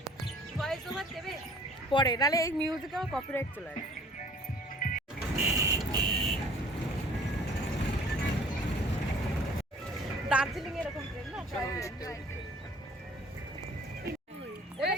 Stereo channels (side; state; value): both; normal; correlation 0.52